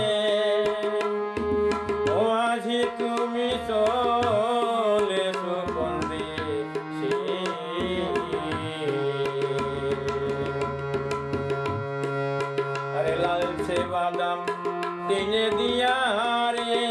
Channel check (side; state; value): both; identical; correlation 1.00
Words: তুমি চলেছো কোন দেশে আরে লালচে বাদাম টেনে দিয়া রে